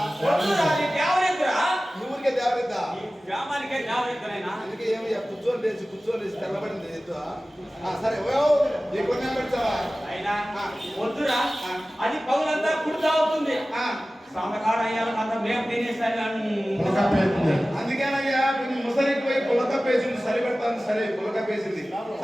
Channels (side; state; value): both; normal; correlation 0.96